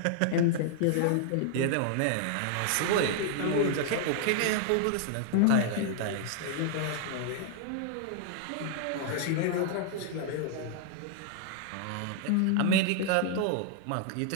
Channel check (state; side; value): different; both; correlation 0.00